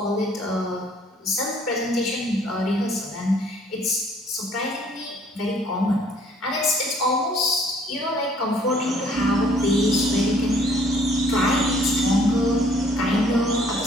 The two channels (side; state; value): both; normal; correlation 0.60